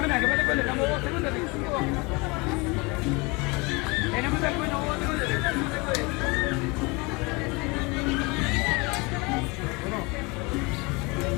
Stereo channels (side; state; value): right; quieter; 27.0 dB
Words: que me estamos 2 segundos. Tenemos el bueno 2 segundos.